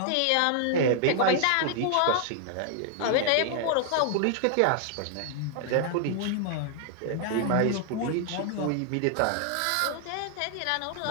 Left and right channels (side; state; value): both; different; correlation 0.00